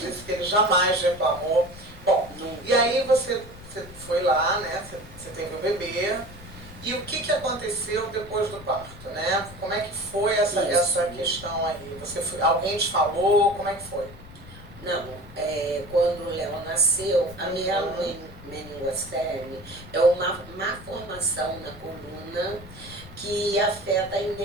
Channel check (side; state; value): left; noise; rumble, 17 dB below the sound